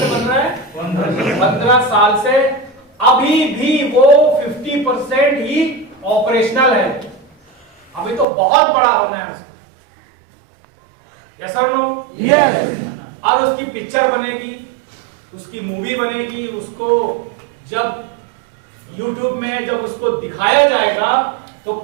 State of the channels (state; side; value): drops out; left; at 8.2 s